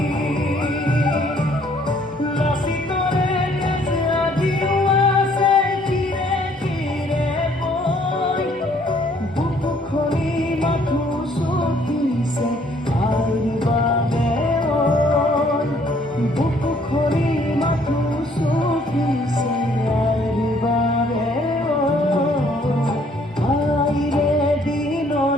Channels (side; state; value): both; normal; correlation 0.63